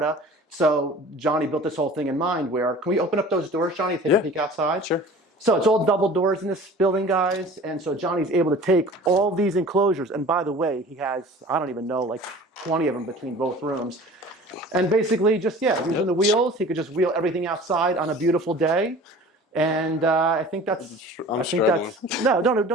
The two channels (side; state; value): both; normal; correlation 0.43